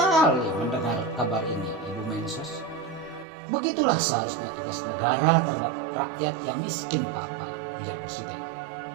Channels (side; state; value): left; drops out; at 3.2 s